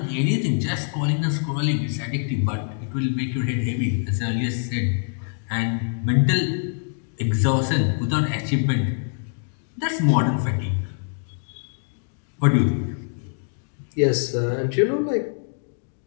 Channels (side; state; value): right; silent; 59 dB below the other